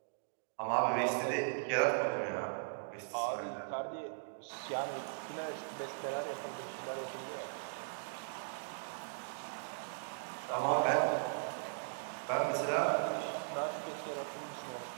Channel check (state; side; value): silent; left; digital silence